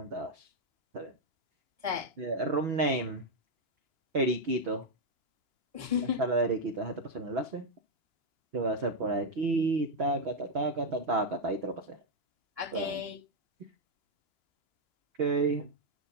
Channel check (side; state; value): left; late; 2.9 ms